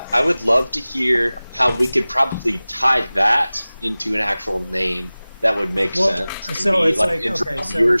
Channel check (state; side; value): inverted; both; correlation -0.98